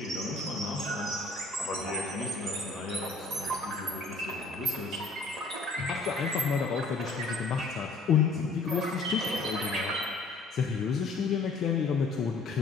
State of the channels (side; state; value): right; quieter; 3.6 dB